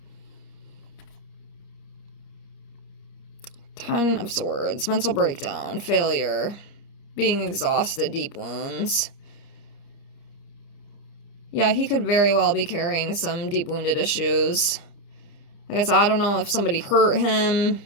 Ten of Swords, mental breakdown, failure, being exhausted, deep wounds. Yeah, he could very well be carrying some deep wounded issues. Like I said, I don't know if somebody hurt him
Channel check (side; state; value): right; late; 30 ms